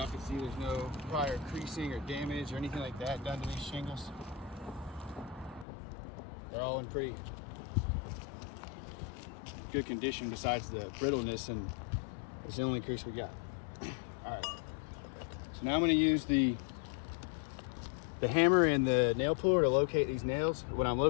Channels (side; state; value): right; drops out; at 5.7 s